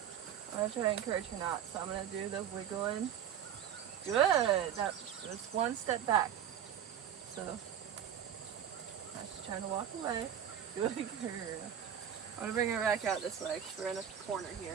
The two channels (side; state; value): left; quieter; 9.5 dB